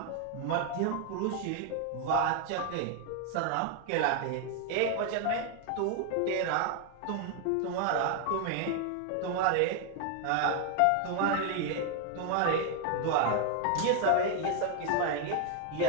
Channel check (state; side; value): different; both; correlation 0.00